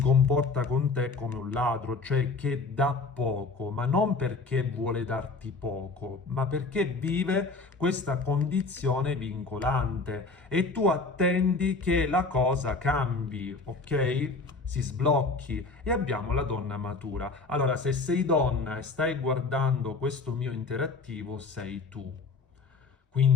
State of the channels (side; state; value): right; quieter; 3.9 dB